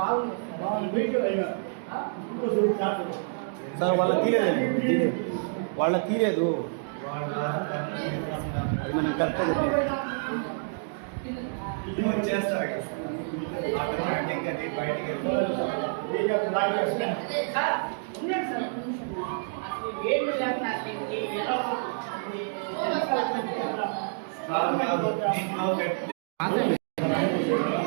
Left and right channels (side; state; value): left; silent; digital silence